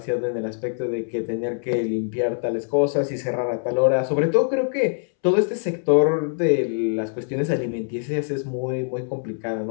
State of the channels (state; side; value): silent; right; 63 dB below the other